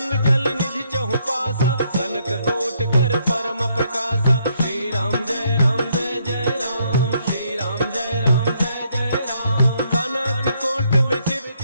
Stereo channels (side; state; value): both; inverted; correlation -0.72